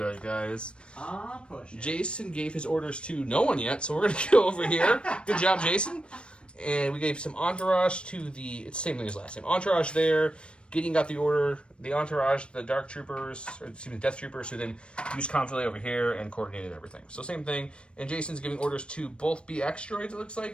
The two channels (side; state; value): right; late; 0.057 ms